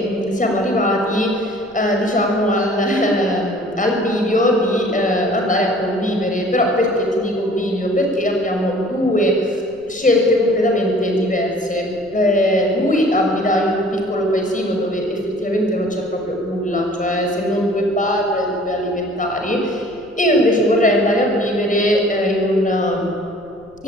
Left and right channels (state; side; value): noise; left; rumble, 28 dB below the sound